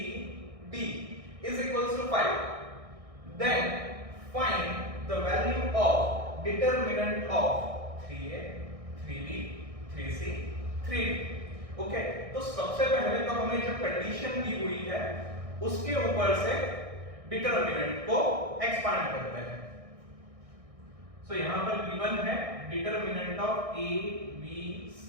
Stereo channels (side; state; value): left; late; 1.6 ms